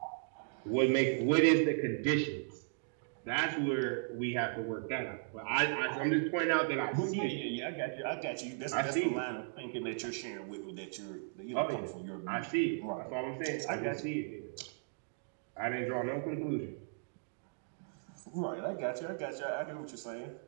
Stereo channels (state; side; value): silent; left; digital silence